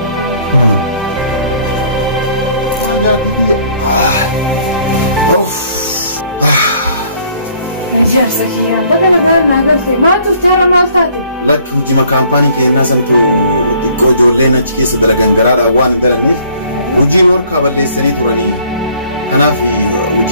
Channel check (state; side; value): inverted; both; correlation -0.59